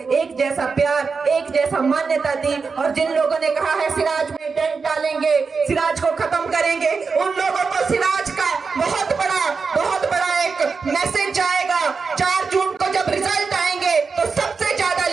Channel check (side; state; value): left; quieter; 4.9 dB